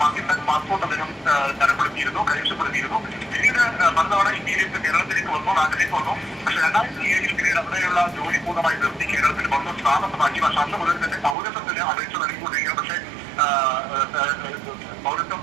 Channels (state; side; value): drops out; left; at 11.4 s